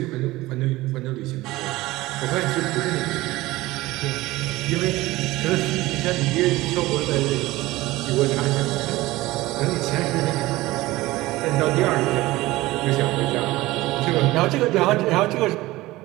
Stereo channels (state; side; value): quieter; left; 18.6 dB